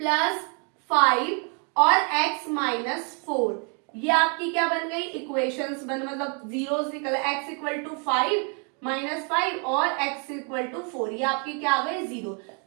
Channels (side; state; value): left; quieter; 38.3 dB